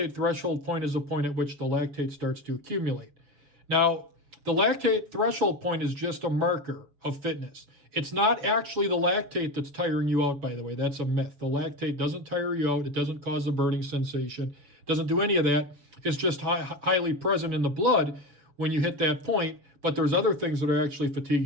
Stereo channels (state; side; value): late; left; 6.6 ms